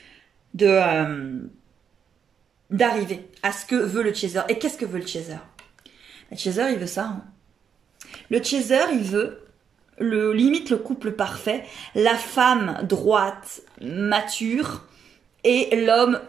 d'arriver à ce que veut le chaser. Et qu'est-ce que veut le chaser? Le chaser, il veut ça. Hein. Le chaser, il veut limite le couple parfait, la femme droite, mature, et l'homme...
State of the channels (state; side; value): quieter; left; 7.5 dB